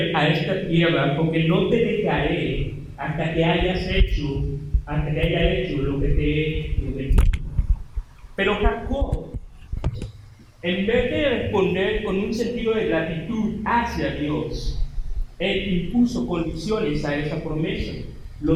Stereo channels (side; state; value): both; identical; correlation 1.00